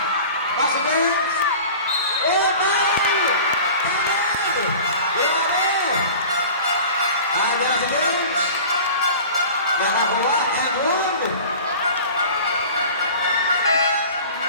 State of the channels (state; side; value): inverted; both; correlation -0.40